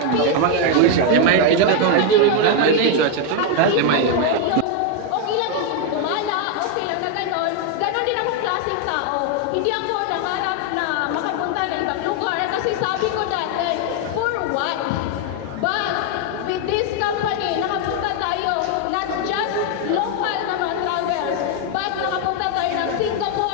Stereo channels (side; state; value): both; different; correlation 0.01